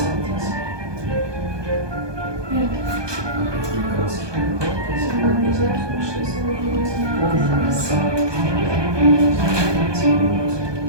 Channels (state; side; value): late; left; 1.2 ms